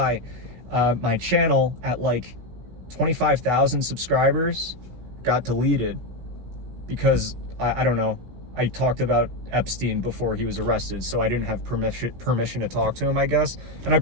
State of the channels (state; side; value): late; left; 16 ms